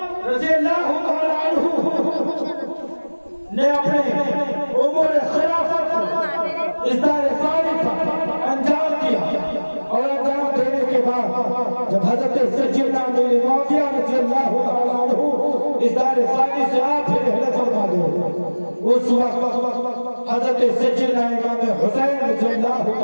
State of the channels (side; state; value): both; inverted; correlation -1.00